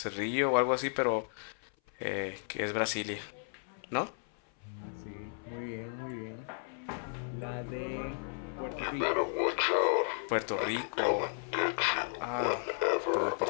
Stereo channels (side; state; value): right; silent; 55 dB below the other